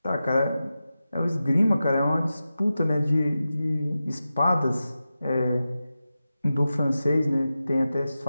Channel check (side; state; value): both; inverted; correlation -0.93